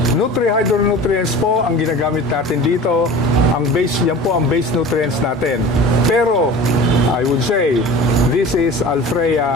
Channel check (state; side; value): normal; both; correlation 0.38